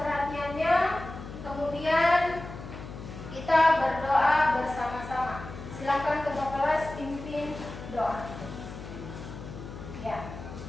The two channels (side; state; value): left; noise; hum, 11 dB below the sound